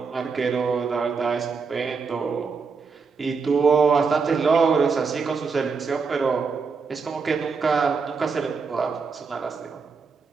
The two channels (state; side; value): quieter; left; 5.1 dB